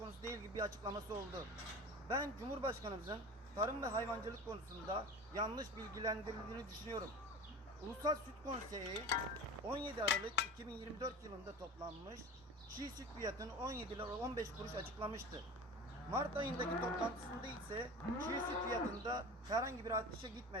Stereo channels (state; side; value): normal; both; correlation 0.34